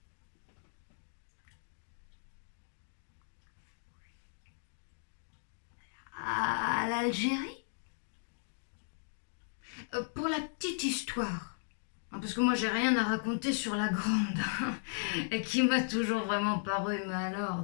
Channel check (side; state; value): right; silent; digital silence